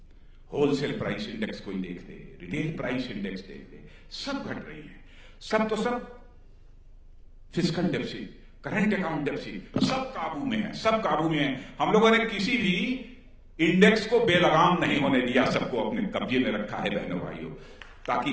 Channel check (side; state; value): both; identical; correlation 1.00